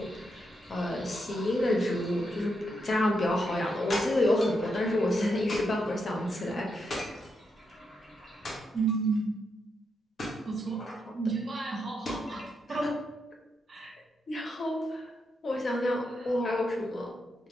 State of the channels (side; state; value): both; normal; correlation 0.82